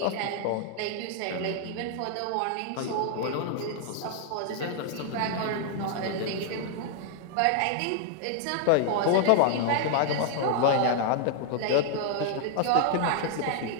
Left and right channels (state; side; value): different; both; correlation 0.00